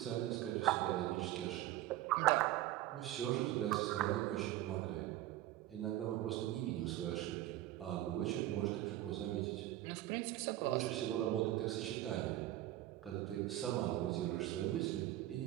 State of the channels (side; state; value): left; quieter; 14.8 dB